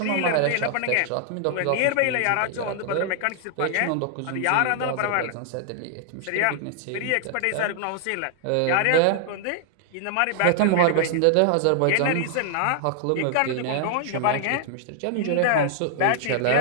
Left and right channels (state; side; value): different; both; correlation 0.00